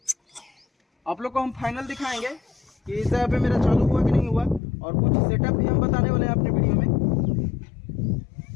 आप लोग को हम फाइनल दिखाएंगे कि इस जगह पे मेरा चालू हुआ कि नहीं हुआ। और कुछ सेटअप भी हम बताने वाले हैं अपने वीडियो में।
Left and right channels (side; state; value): right; drops out; at 4.6 s